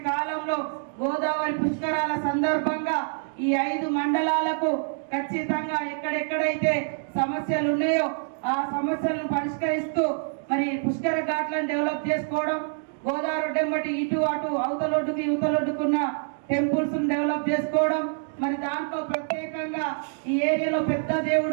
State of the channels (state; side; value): silent; left; 61 dB below the other